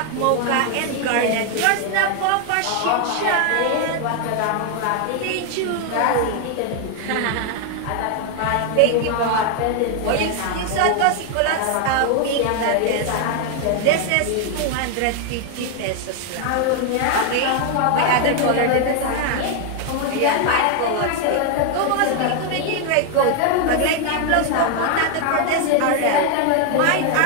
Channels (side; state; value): both; different; correlation 0.00